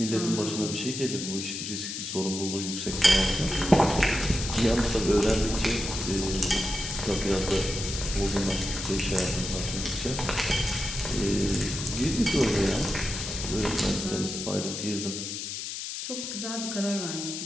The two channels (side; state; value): left; noise; hiss, 5 dB below the sound